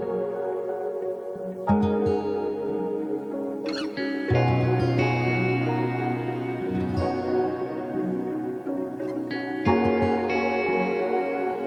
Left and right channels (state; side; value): identical; both; correlation 1.00